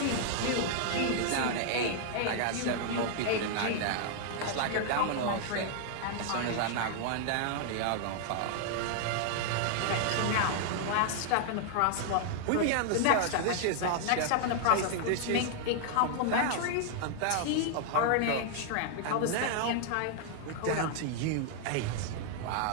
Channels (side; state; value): both; different; correlation 0.00